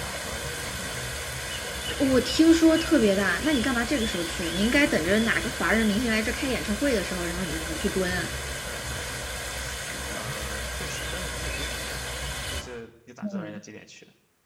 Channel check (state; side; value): identical; both; correlation 1.00